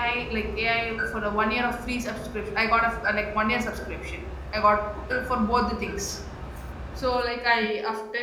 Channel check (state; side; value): identical; both; correlation 1.00